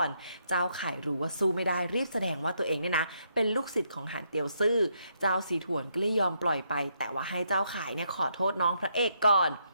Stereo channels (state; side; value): inverted; both; correlation -0.75